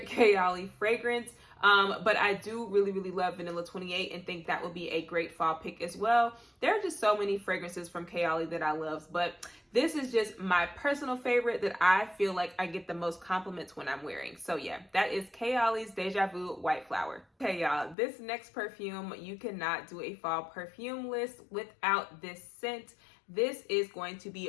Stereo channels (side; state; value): right; drops out; at 17.9 s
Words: KAYALI fragrance. But I do really, really love Vanilla 28 and think that would be a great fall pick as well. There are just so many fragrances from KAYALI that I love, but this is just my personal favorite that I feel like I get the most compliments when I'm wearing. So yeah, that is KAYALI's Deja Vu White Flower. Okay, y'all, this next perfume, you cannot do a fall perfume list without this scent. This is going to